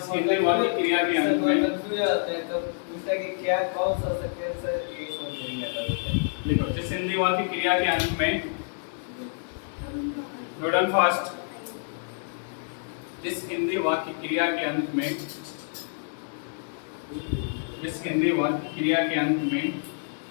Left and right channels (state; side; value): silent; right; digital silence